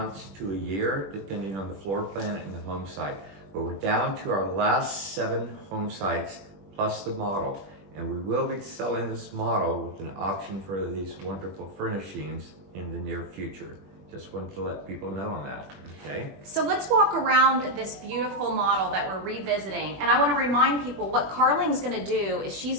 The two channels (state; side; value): late; left; 21 ms